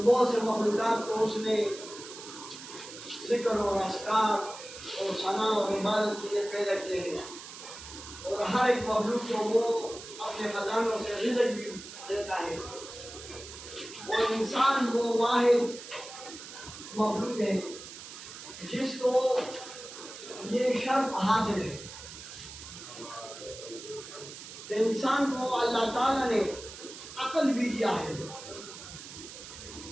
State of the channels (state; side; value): noise; right; hiss, 13 dB below the sound